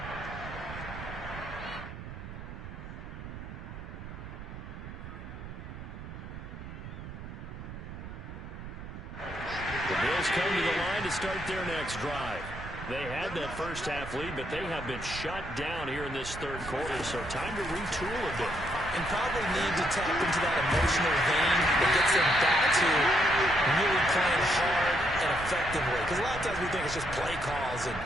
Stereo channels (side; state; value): right; noise; rumble, 11 dB below the sound